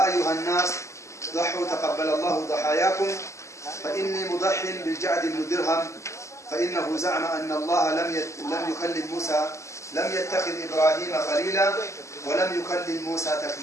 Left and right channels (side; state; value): right; late; 0.14 ms